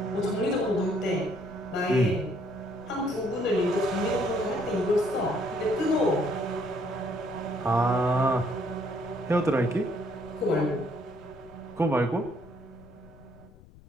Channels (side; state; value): left; noise; rumble, 23 dB below the sound